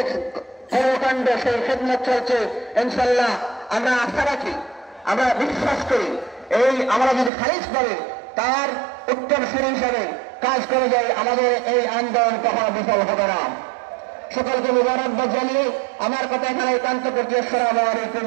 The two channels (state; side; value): drops out; left; at 7.3 s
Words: কর্মকাণ্ড সেই খেদমত চলছে, ইনশাল্লাহ আমরা আশা রাখি, আমরা বিশ্বাস করি, এই আমরা যদি খারিজ পাবে তার উত্তরসূরি হিসাবে কাজ করে যাই, আমাদের এই আন্দোলন কখনো বিফল হবে না। সকলকে মুবারকবাদ জানিয়ে আমার কথা এখানে একান্ত করছি। আসসালামু আলাইকুম